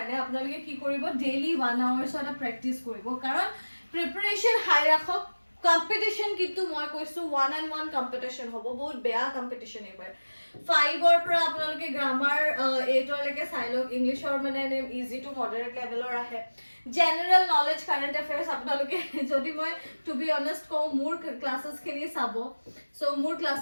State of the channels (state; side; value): inverted; both; correlation -1.00